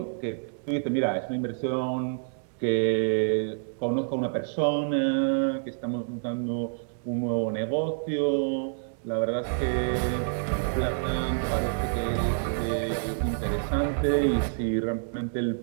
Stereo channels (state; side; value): silent; left; digital silence